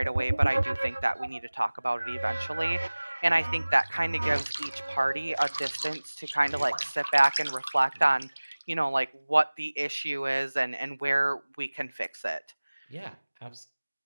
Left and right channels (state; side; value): inverted; both; correlation -1.00